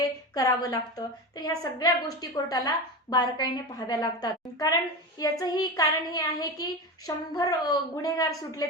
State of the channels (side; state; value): both; normal; correlation 0.23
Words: करावं लागतं. तर ह्या सगळ्या गोष्टी कोर्टाला बारकाईने पाहाव्या लागतात. कारण याचंही कारण हे आहे की 100 गुन्हेगार सुटले